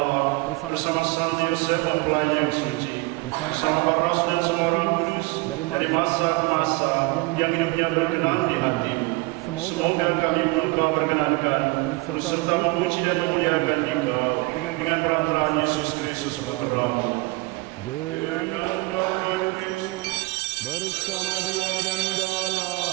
bersama Santo Yosef mempelai yang suci, bersama para rasul dan semua orang kudus, dari masa ke masa, yang hidupnya berkenan di hati-Mu. Semoga kami pun Kau perkenankan, terus serta memuji dan memuliakan Dikau, dengan peran-peran Yesus Kristus Putra-Mu. Dengan peran-peran Kristus, bersama Dia dan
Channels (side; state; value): left; quieter; 24.0 dB